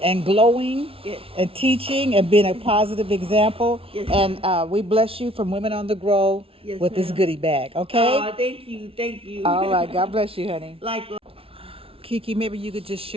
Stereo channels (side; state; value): left; late; 0.27 ms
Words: and glowing and teaching and being a positive example. Yes, and we bless you from Women on the Grow with this goodie bag, okay? Oh, thank you. All right. God bless you, honey. Like, Kiki, maybe you could just